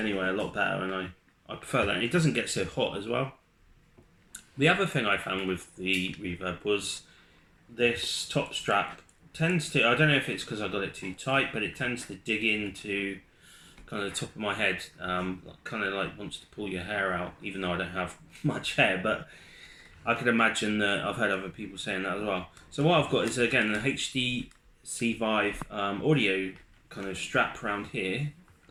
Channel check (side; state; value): both; identical; correlation 1.00